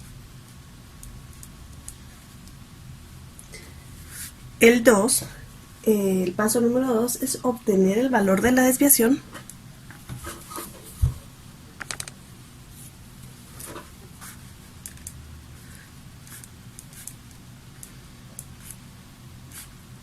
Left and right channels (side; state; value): both; identical; correlation 1.00